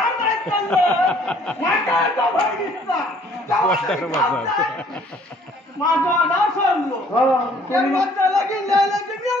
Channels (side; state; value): both; normal; correlation 0.59